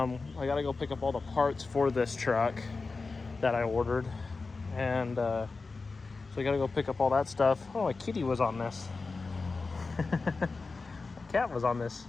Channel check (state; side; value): quieter; right; 4.0 dB